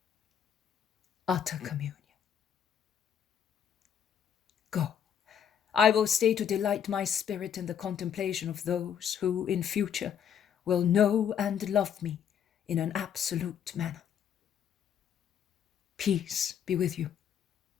Utter communion. Go. I will stay to delight my spirit in the contemplation of those who in future will know and love me in an absolute manner. Peace be with you.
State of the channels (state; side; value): quieter; right; 8.5 dB